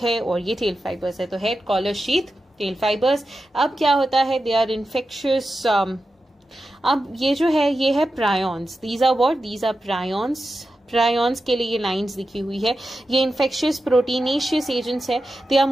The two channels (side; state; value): both; normal; correlation 0.91